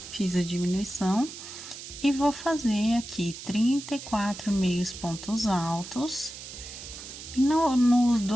Fiz a diminuição e vou fazer aqui 34 meios pontos altos. E nos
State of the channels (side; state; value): right; noise; hiss, 12 dB below the sound